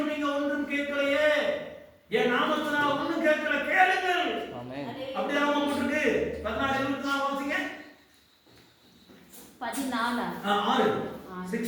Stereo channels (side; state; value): both; identical; correlation 1.00